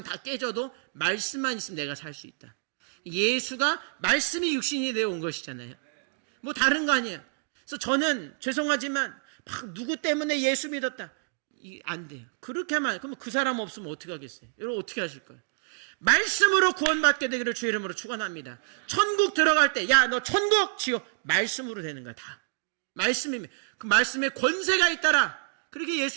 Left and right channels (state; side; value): silent; left; digital silence